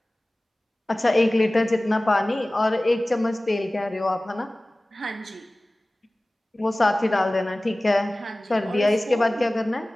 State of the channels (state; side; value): normal; both; correlation 0.98